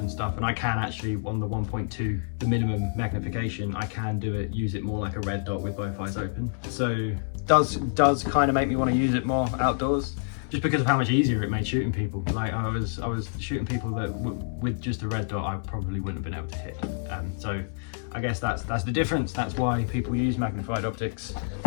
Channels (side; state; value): right; silent; 60 dB below the other